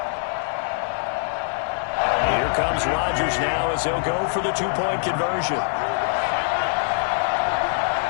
Here comes Rodgers now as he'll go for the two-point conversion.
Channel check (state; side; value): silent; right; 63 dB below the other